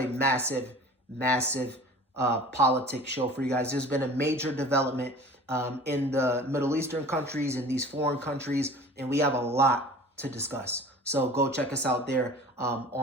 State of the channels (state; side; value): normal; both; correlation 0.42